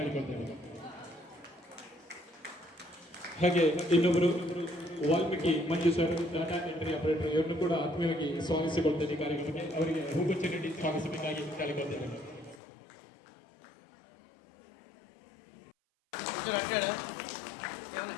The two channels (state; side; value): drops out; right; at 12.6 s